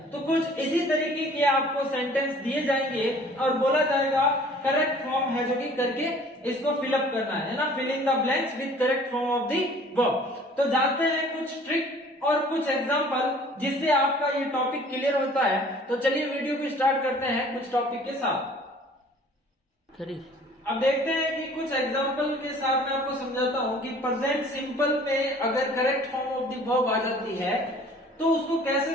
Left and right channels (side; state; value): both; normal; correlation 0.51